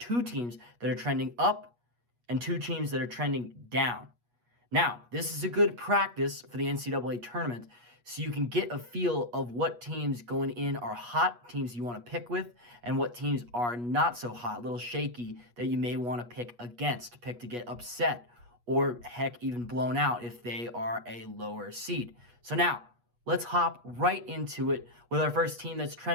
teams that are trending up and two teams that are trending down. Now, this is a good practice for the NCAA tournament, so you can get a feel of what teams going in are hot, teams you want to pick with, and what teams are not so hot, a little shaky, that you may want to pick against, pick to get upset, or heck, even blown out if they are a lower seed. So now, let's hop right into it with our first team that's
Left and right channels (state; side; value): late; left; 8.3 ms